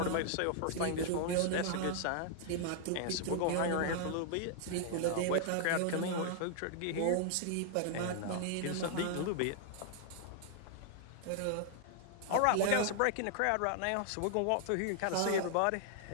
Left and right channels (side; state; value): both; different; correlation 0.00